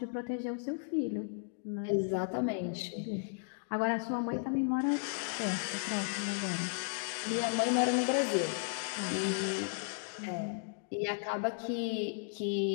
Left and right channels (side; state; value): right; silent; digital silence